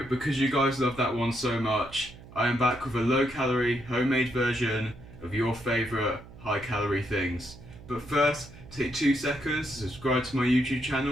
because you guys love that one so much, I am back with a low calorie homemade version of your favourite high calorie things. But first, take 2 seconds to subscribe to my YouTube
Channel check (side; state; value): right; noise; hum, 18 dB below the sound